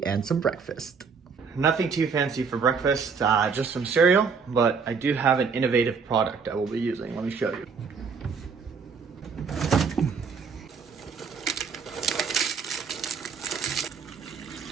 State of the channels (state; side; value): quieter; left; 5.6 dB